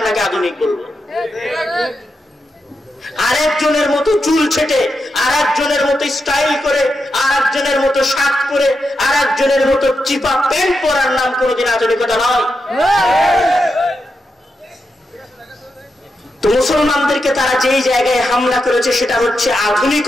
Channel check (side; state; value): both; normal; correlation 0.86